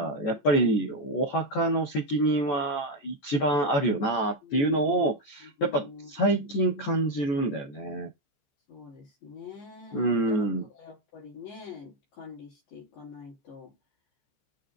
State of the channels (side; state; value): right; late; 15 ms